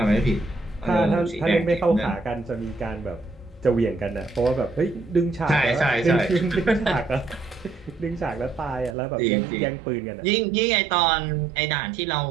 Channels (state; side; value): drops out; left; at 9.0 s